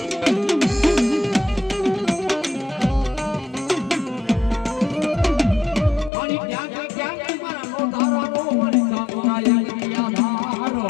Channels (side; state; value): right; drops out; at 6.1 s